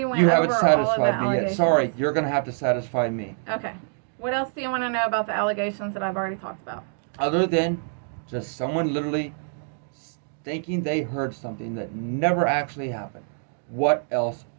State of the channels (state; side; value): silent; left; digital silence